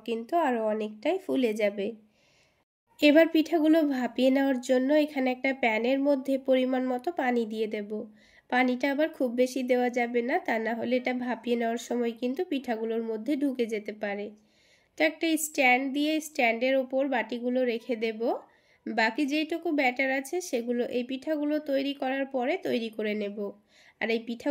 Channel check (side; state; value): both; identical; correlation 1.00